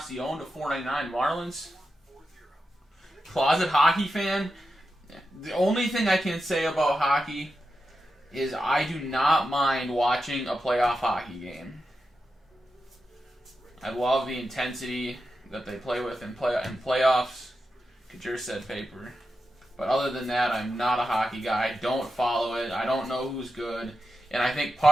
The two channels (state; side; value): normal; both; correlation 0.89